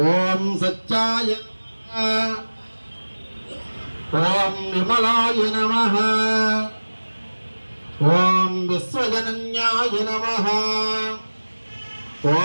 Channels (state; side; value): inverted; both; correlation -1.00